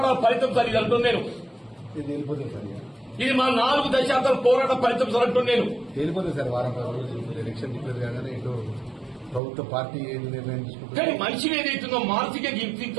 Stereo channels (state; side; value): drops out; left; at 9.4 s